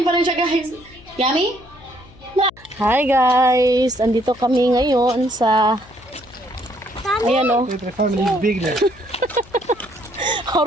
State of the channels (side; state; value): left; noise; hum, 24 dB below the sound